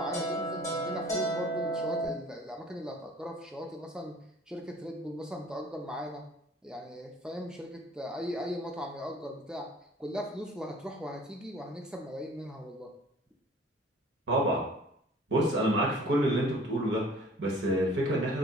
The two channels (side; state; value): both; normal; correlation 0.50